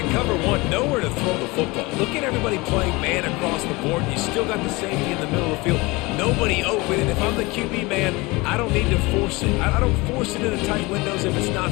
cover one, nowhere to throw the football. Look at everybody playing man across the board, and you still got the safety in the middle of the field. Nobody open, and if I'm the QB man, I don't need to force it. I don't force it into tight windows if it's not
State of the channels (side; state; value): right; quieter; 23.7 dB